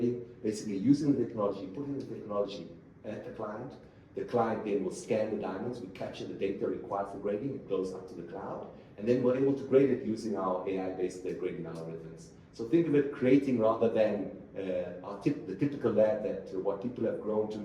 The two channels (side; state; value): both; identical; correlation 1.00